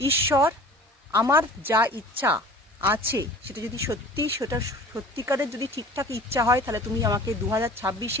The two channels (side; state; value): both; normal; correlation 0.44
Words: ঈশ্বর, আমার যা ইচ্ছা আছে সেটা যদি সত্যিকারের যদি ঠিকঠাক ইচ্ছা হয় তাহলে তুমি আমাকে